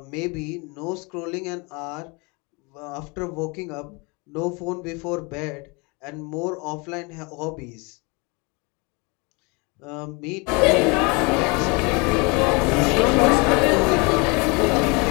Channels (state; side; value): quieter; right; 29.2 dB